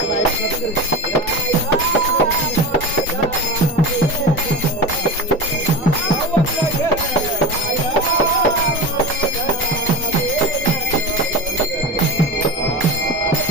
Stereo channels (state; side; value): normal; both; correlation 0.26